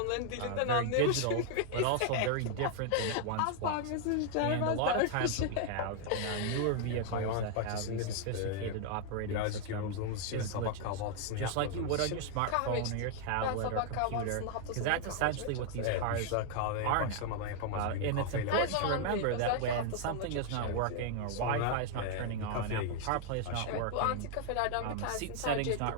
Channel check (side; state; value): both; different; correlation 0.00